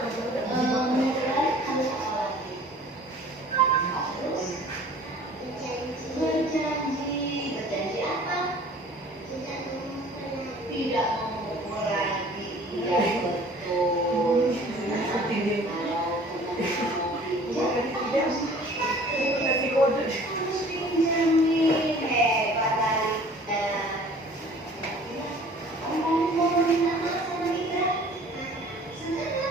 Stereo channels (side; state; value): both; normal; correlation 0.49